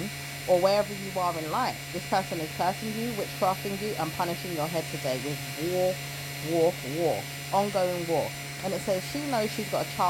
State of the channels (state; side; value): identical; both; correlation 1.00